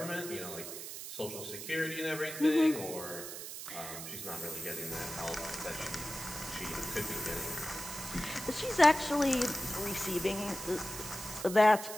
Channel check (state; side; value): noise; right; hiss, 9 dB below the sound